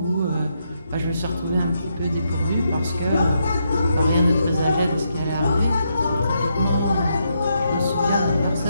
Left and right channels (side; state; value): both; inverted; correlation -0.79